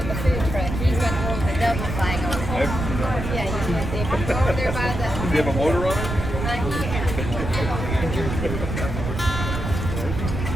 the food truck. He's got one you have a motor on it?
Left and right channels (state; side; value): noise; right; rumble, 4 dB below the sound